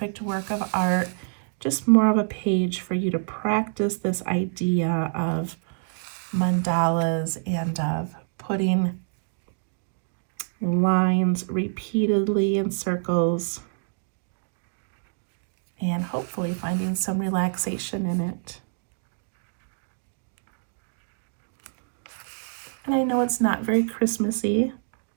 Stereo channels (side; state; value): left; silent; digital silence